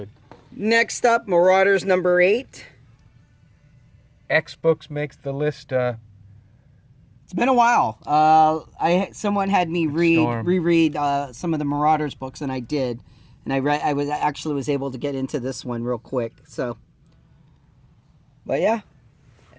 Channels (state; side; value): identical; both; correlation 1.00